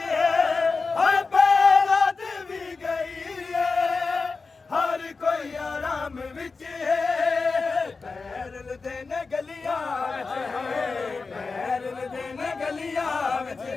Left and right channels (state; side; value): quieter; right; 4.3 dB